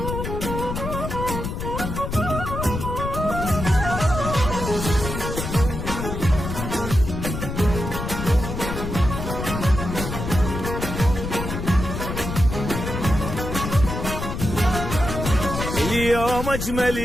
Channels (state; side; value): noise; left; rumble, 5 dB below the sound